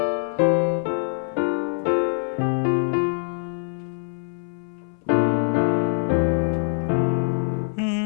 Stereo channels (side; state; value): right; silent; 61 dB below the other